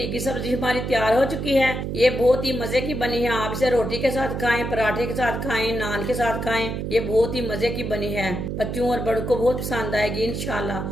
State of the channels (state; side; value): noise; right; hum, 4 dB below the sound